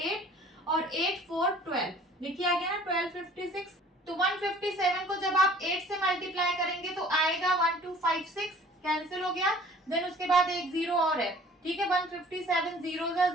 और 8 4 12, देखिए आ गया ना 1256। तो 157 को जब आप 8 से मल्टीप्लाई करेंगे तो आएगा 1256, कैंसिल हो गया, देन उसके बाद एक 0 और है, ठीक है। 157 0 जा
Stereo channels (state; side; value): normal; both; correlation 0.51